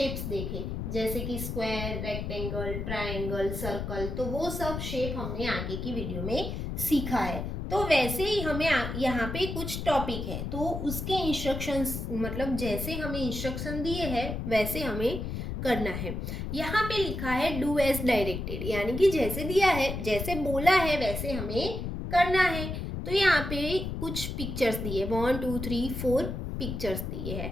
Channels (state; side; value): noise; left; rumble, 4 dB below the sound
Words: देखे, जैसे कि स्क्वायर, रेक्टेंगल, ट्रायंगल, सर्कल। तो वो सब शेप हमने आगे की वीडियो में सीखा है। तो वैसे ही हमें यहाँ पे कुछ टॉपिक है, तो उसके इंस्ट्रक्शंस, मतलब जैसे हमें इंस्ट्रक्शन दिए हैं वैसे हमें करना है। यहाँ पे लिखा है डू एज डायरेक्टेड, यानी कि जैसे दिया है, जैसे बोला है वैसे हमें करना है। तो यहाँ पे कुछ पिक्चर्स दिए, 1 2 3 4 पिक्चर्स दिए